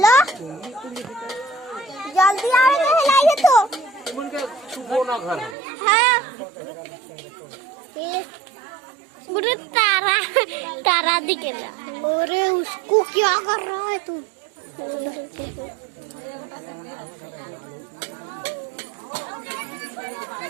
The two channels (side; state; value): left; drops out; at 5.6 s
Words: जल्दी आवे तो हिलाइए तो उनके छुपो ना घर हाँ मुझे तारा तारा दिखेगा। अरे उसको क्या कर रहा है तू?